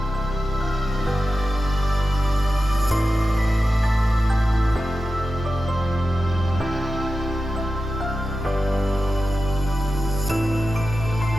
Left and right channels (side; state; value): both; normal; correlation 0.92